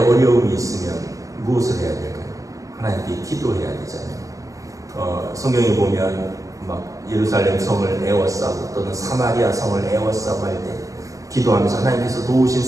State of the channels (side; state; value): left; late; 0.16 ms